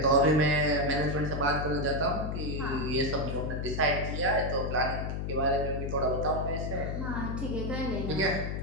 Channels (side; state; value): left; noise; hum, 3 dB below the sound